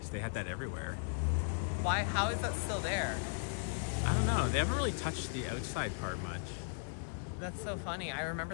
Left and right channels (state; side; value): silent; right; digital silence